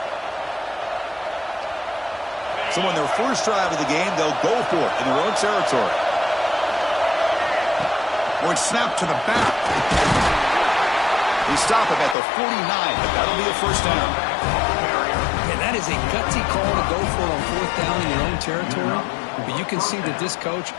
So on their first drive of the game, they'll go for it in their own territory. Or it's snapped to the back. They stop it at the 49, but that'll be a first down. And that is a gutsy call to go for it on 4th down in your own territory. But you can see that this coach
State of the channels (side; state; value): right; drops out; at 12.2 s